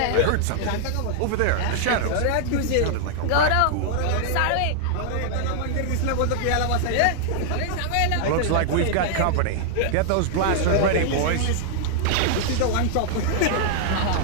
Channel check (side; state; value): both; different; correlation -0.01